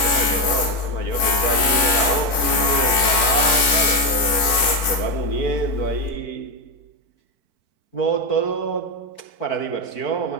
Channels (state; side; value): late; right; 4.5 ms